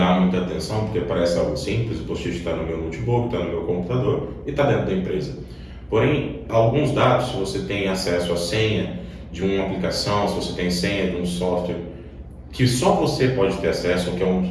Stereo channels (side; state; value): both; identical; correlation 1.00